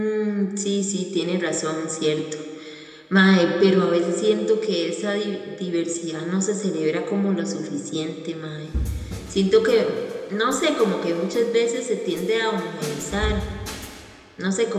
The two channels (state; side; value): identical; both; correlation 1.00